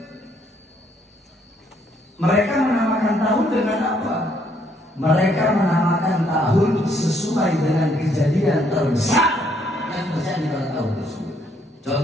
mereka menamakan tahun dengan apa? Mereka menamakan tahun sesuai dengan kejadian terbesar yang terjadi pada tahun tersebut.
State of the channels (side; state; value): both; normal; correlation 0.69